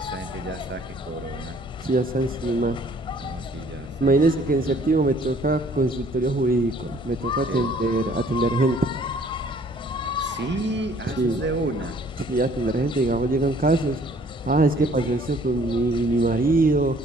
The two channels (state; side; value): normal; both; correlation 0.58